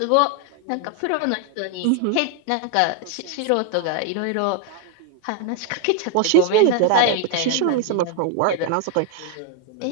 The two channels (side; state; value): both; different; correlation 0.01